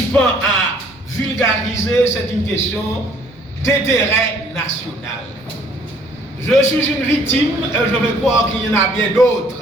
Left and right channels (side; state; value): both; normal; correlation 0.60